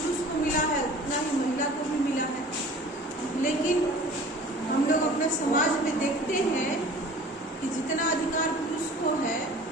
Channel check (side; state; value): both; normal; correlation 0.45